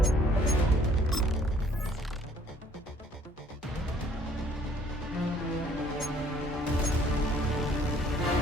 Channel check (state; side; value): normal; both; correlation 0.60